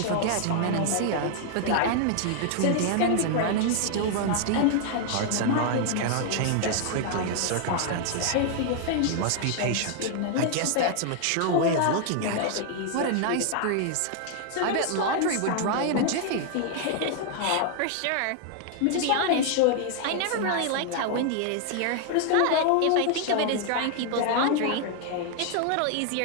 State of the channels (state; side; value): different; both; correlation 0.00